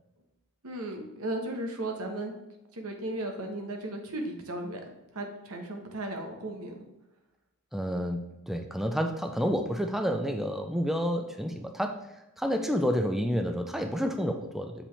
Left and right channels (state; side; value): normal; both; correlation 0.72